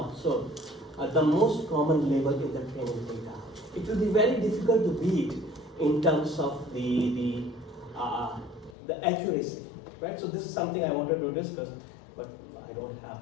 the most common label in the training data. It will be very difficult to beat in terms of the accuracy, right? So this is something I wanted to discuss, but I don't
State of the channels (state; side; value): drops out; right; at 8.8 s